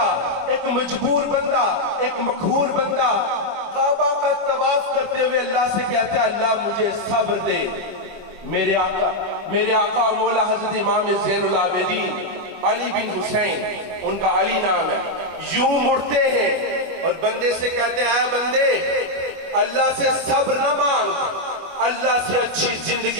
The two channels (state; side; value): late; left; 25 ms